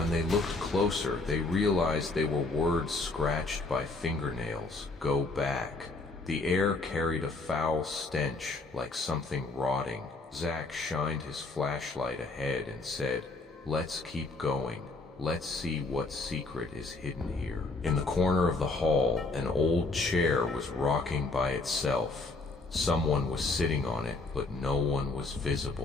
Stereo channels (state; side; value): quieter; right; 3.4 dB